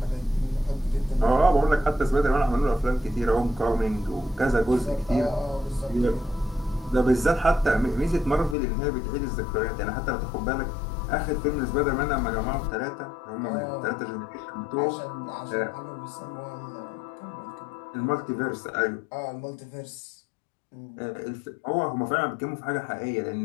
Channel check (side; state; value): right; drops out; at 8.6 s